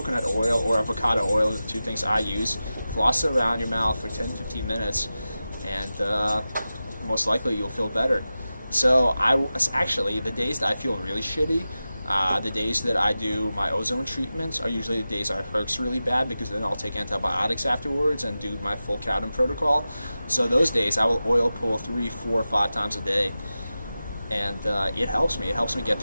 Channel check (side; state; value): both; inverted; correlation -0.94